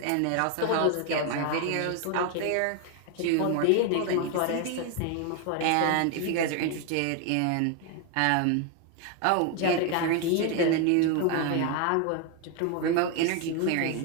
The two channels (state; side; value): different; both; correlation 0.01